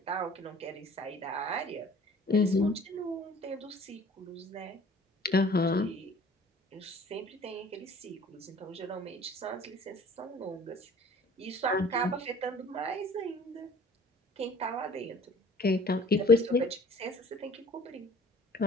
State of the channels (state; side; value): normal; both; correlation 0.51